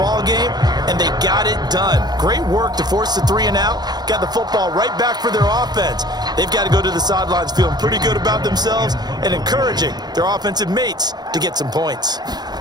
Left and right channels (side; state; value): left; late; 0.20 ms